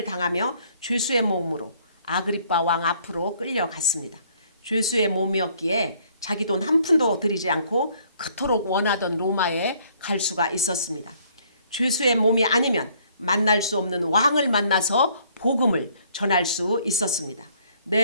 당하며 죄수의 몸으로 아그리빠 왕 앞으로 끌려갔습니다. 죄수의 몸이었기에 자기 돈 한 푼도 들이지 않고 그토록 원하던 로마에 갈 수가 있었습니다. 죄수의 몸이 아니면 만날 수 없는 왕을 만나서 복음을 전할 수 있었습니다.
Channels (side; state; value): both; inverted; correlation -0.63